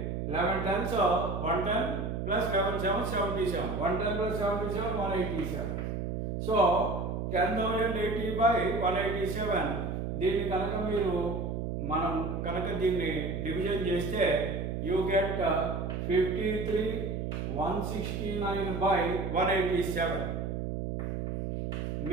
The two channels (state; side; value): noise; right; hum, 3 dB below the sound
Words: 11 10s 110 plus 11 7 77 110 plus 77 187. So 10,080/187. దీన్ని కనుక మనం కనుక దీన్ని డివిజన్ చేస్తే యూ గెట్ 53,169/187